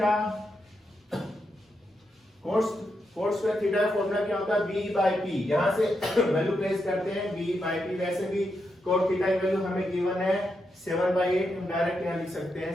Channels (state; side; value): normal; both; correlation 0.84